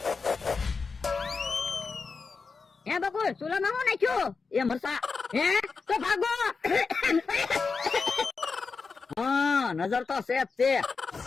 હે બકુલ સુલામાં હું નાખ્યું? એ મરસા. હે તો ભાગો. હા નજર તો સેફ છે.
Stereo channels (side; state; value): right; quieter; 4.8 dB